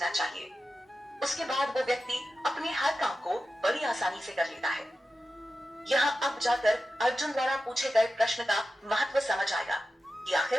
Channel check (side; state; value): both; normal; correlation 0.93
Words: चाहिए। उसके बाद वो व्यक्ति अपने हर काम को बड़ी आसानी से कर लेता है। यहाँ अब जाकर अर्जुन द्वारा पूछे गए प्रश्न का महत्व समझ आएगा कि